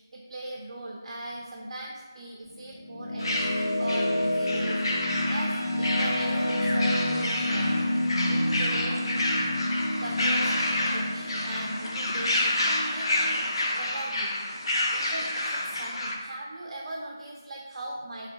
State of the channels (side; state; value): both; inverted; correlation -0.78